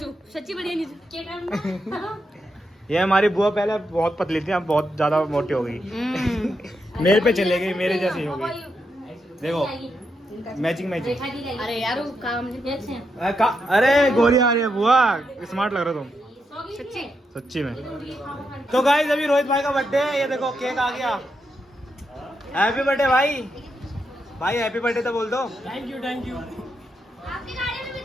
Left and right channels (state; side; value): normal; both; correlation 0.83